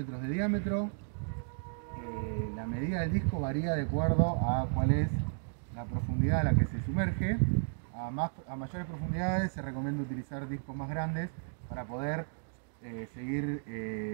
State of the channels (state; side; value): silent; left; digital silence